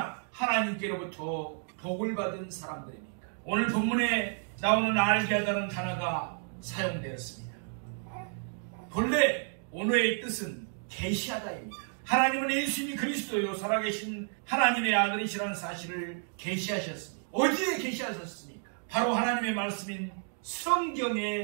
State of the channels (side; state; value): left; silent; 57 dB below the other